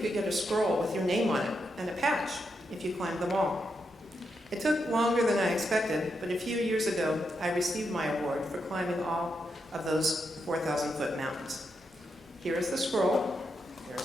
get a scroll with your name on it, and a patch, if you climbed them all. It took longer than I expected, but a few years ago, I received my award for climbing all of those 4,000-foot mountains. Here is the scroll,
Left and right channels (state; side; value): normal; both; correlation 0.83